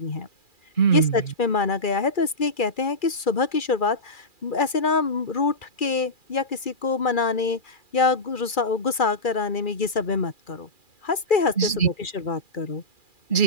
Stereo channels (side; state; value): right; late; 2.4 ms